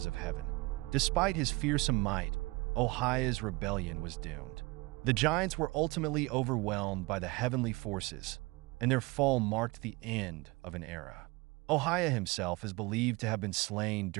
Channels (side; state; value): left; quieter; 23.9 dB